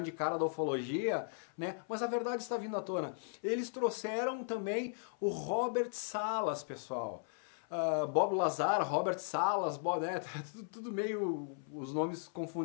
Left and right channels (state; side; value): silent; right; 53 dB below the other